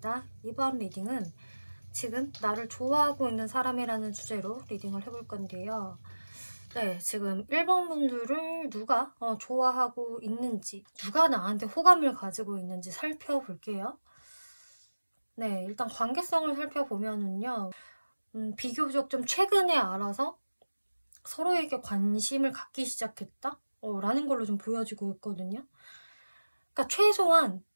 이번 리딩은 지금 나를 좋아하고 있는 사람이라는 주제로 리딩을 해볼 건데요. 네, 지금 1번 분들을 누가 좋아하고 있는지, 누가 나한테 호감을 가지고 있는지 살펴볼게요. 네, 일단 관계성을 살펴보면은요. 비교적 좀 최근에 알아서 서로에게 관심을 갖기 시작했다? 라는 걸로 좀 보여지고 있거든요. 그러니까 최소한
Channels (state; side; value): inverted; both; correlation -1.00